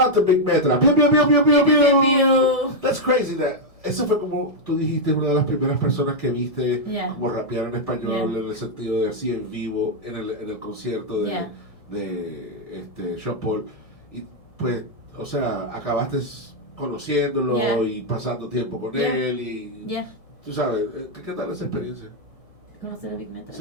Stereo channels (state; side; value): late; right; 1.7 ms